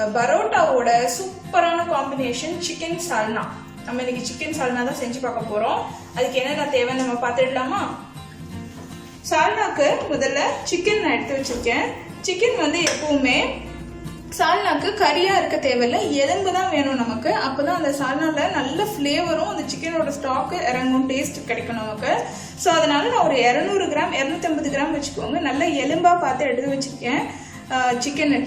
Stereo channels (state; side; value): identical; both; correlation 1.00